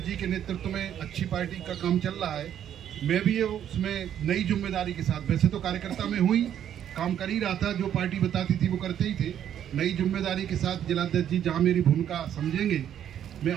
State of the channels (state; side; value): quieter; left; 10.0 dB